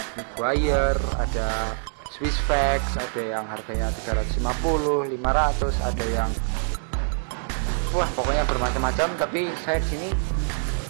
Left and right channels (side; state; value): left; silent; digital silence